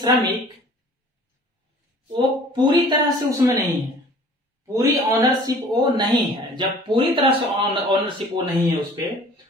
वो पूरी तरह से उसमें नहीं है, पूरी ऑनरशिप वो नहीं है। जब पूरी तरह से ऑनरशिप वो नहीं है उस पर,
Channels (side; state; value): both; normal; correlation 0.49